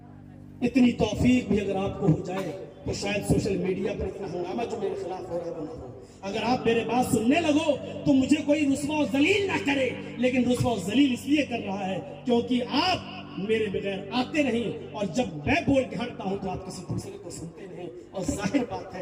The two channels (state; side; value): identical; both; correlation 1.00